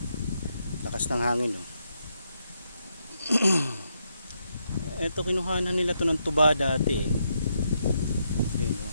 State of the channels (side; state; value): both; inverted; correlation -0.80